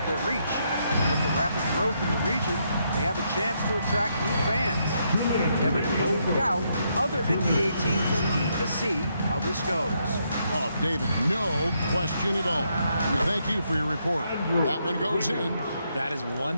their reach. With the rapid growth in the region, they have a chance to attract new fans. Kevin, no doubt, other NBA teams are keen to see how this goes. Oh, David, no question at all. We thank you for your report. That one goes in. That is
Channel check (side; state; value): both; inverted; correlation -0.77